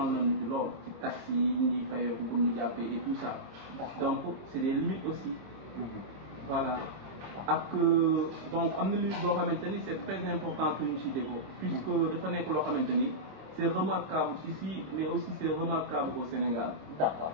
nañu ci lool ci taxi yi ñuy fayoo bu ñu jàppee et tout ça. donc c'est des limites aussi. voilà ak donc am na limite boo xamante ni c'est très important que ñu cité ko. puisque dafa nekk loo xamante ni c'est remarquable ici mais aussi c'est remarquable au Sénégal. d'accord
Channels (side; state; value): left; late; 25 ms